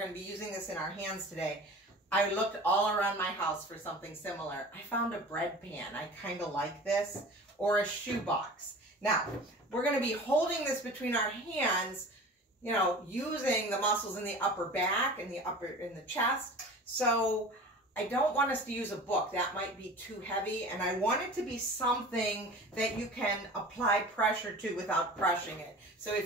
to be using this in our hands today, I looked all around my house for something similar. I found a bread pan. I kind of like this, or a shoe box. Now, we're going to be holding this between our hands, you know, using the muscles in the upper back and in the chest. So I don't want us to use a book. That might be too heavy, and I want it to be something that you can apply pressure to without crushing it. So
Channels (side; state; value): both; normal; correlation 0.39